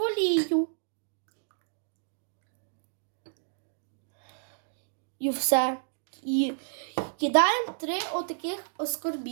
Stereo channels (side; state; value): left; silent; digital silence